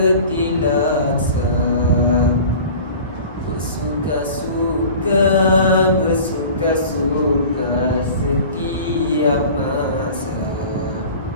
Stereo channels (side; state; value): both; inverted; correlation -0.41